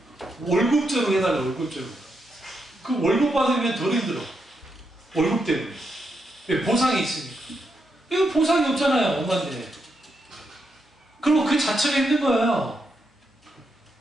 월급제로 해달라. 월급제로. 그 월급 받으면 더 힘들어. 월급 때문에. 보상이 있으니까. 이거 보상이 없잖아요. 엄마인데. 그리고 그 자체가 힘든 거예요.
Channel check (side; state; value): both; normal; correlation 0.82